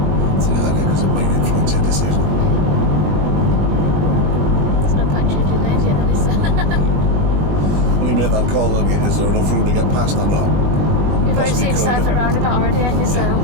So do that here because it might influence your decision. There's no point changing names yet, then, is there? When you made that call, then is there enough room to get past or not? You've already seen Cypher roundabout already, haven't you? So,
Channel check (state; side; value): late; left; 20 ms